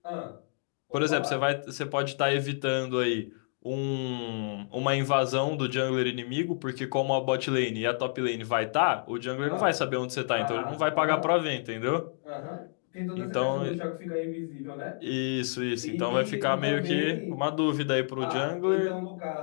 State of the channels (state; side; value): silent; right; digital silence